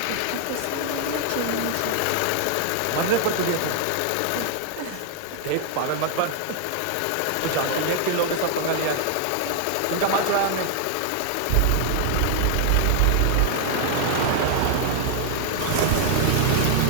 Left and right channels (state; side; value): different; both; correlation 0.00